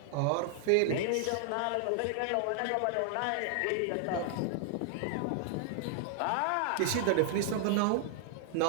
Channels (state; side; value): different; both; correlation 0.00